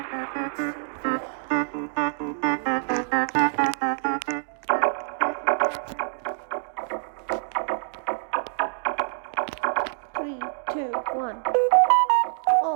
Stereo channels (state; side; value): silent; left; digital silence